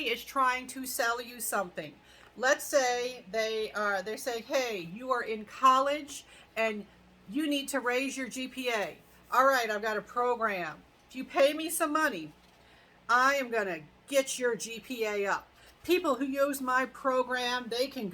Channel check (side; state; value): both; identical; correlation 1.00